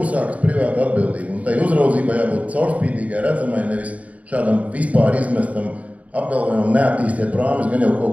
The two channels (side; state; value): left; late; 0.069 ms